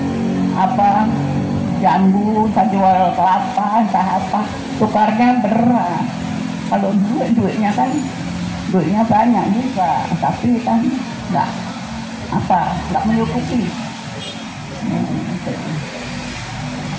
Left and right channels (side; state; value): both; identical; correlation 1.00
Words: jambu, entah jual kelapa, entah apa, tukarnya berat. Kalau duitnya banyak juga, tapi kan nggak menyukupi.